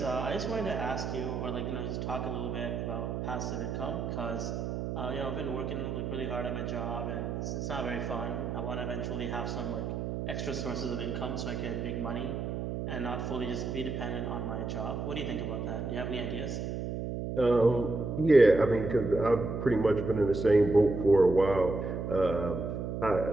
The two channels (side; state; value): right; noise; hum, 3 dB below the sound